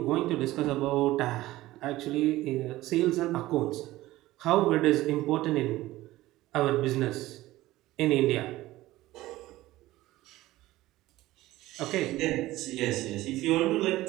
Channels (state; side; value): quieter; left; 16.9 dB